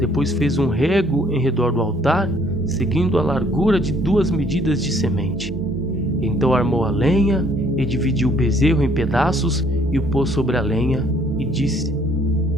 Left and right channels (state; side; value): normal; both; correlation 0.63